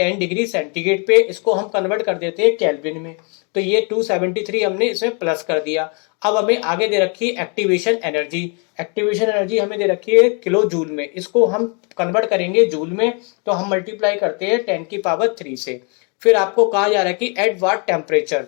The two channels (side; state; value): right; quieter; 35.7 dB